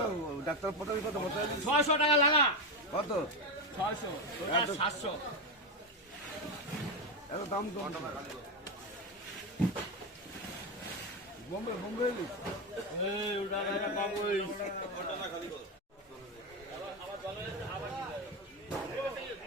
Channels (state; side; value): normal; both; correlation 0.12